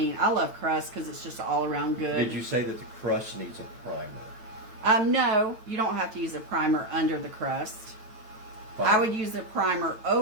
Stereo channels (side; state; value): left; late; 8.9 ms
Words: I love crust because it's just all around good. Did you say that the crust needs a primer? No, you don't have to use a primer under the crust. Fine. I would use a primer